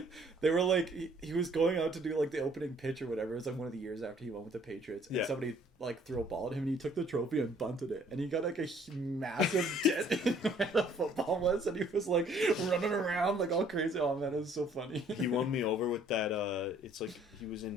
They were like, he was going out to do like the opening pitch or whatever. It was like one of the years after he went with the Patriots, and somebody like threw a ball at him, and he took the trophy and bunted it, and he got like a massive dent in where the football was, and he was like running around like all crazy. Oh man, it was so funny. He won me over with that. It's like he was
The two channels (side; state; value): both; normal; correlation 0.60